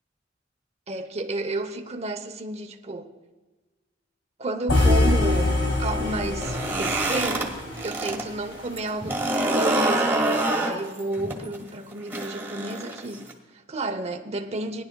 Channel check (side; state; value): both; normal; correlation 0.56